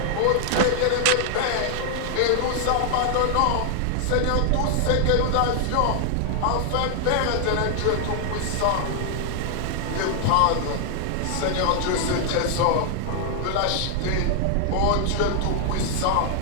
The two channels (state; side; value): different; both; correlation 0.00